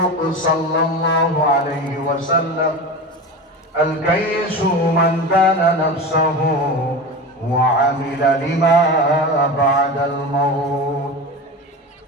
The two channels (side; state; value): both; normal; correlation 0.27